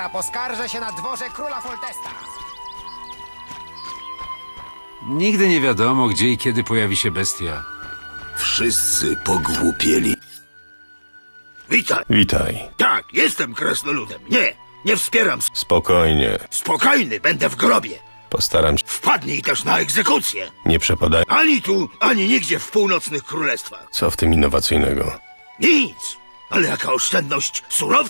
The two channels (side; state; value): both; inverted; correlation -1.00